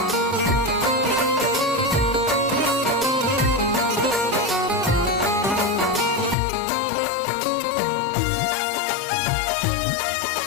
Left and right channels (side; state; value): right; drops out; at 6.4 s